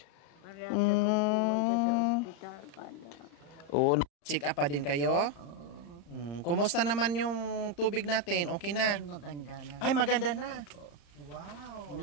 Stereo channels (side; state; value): right; late; 35 ms